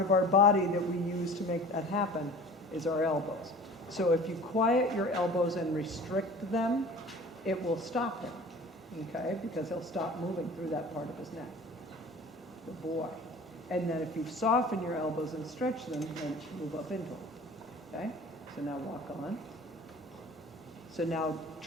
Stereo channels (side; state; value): both; normal; correlation 0.42